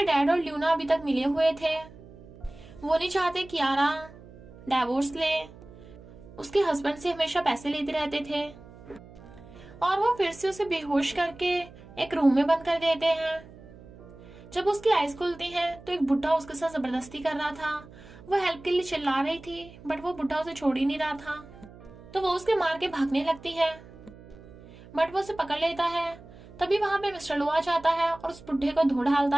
और ल्यूना अभी तक मिले हुए थे। वो नहीं चाहते कियारा डाइवोर्स ले, उसके हस्बैंड से हमेशा पैसे लेते रहते थे। और वो फिर से उसे बेहोश करके एक रूम में बंद कर देते हैं। जब उसकी आईज खुलती हैं तो एक बुढ़ा उसके साथ जबरदस्ती कर रहा था। वो हेल्प के लिए चिल्ला रही थी, बट वो बुढ़ा उसे छोड़ ही नहीं रहा था। तो वो उसके मार के भागने लगती है, बट वो उसे पकड़ लेता है। तभी वहां पे मिस्टर लू आ जाता है और उस बुढ़े को धो डालता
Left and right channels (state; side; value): noise; right; hum, 20 dB below the sound